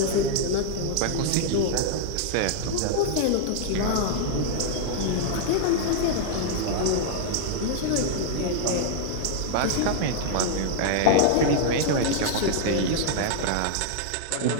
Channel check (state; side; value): different; both; correlation -0.01